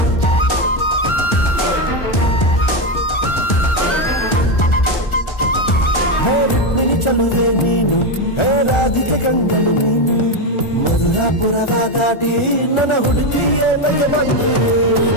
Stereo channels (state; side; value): late; right; 1.4 ms